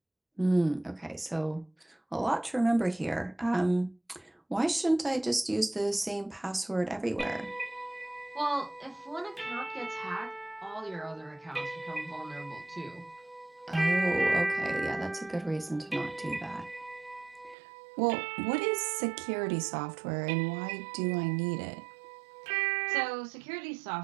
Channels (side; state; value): left; drops out; at 17.6 s